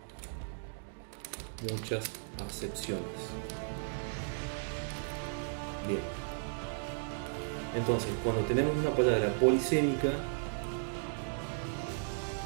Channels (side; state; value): left; silent; digital silence